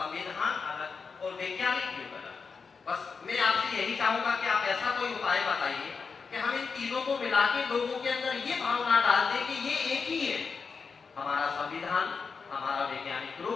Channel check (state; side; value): quieter; right; 5.2 dB